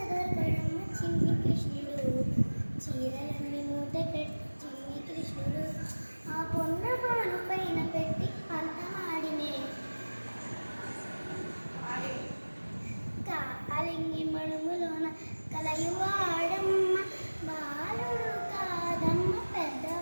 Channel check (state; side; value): inverted; both; correlation -1.00